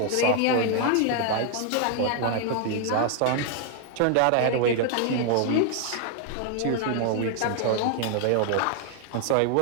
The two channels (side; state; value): both; different; correlation 0.00